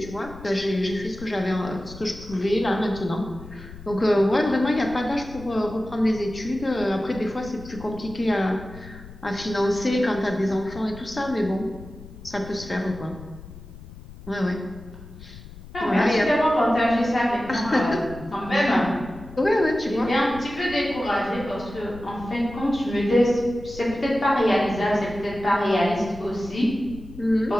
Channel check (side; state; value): left; noise; rumble, 16 dB below the sound